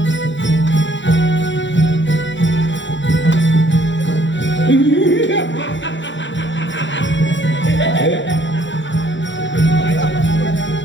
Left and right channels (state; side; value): late; right; 0.54 ms